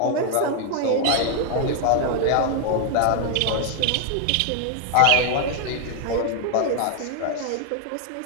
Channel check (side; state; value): both; different; correlation 0.00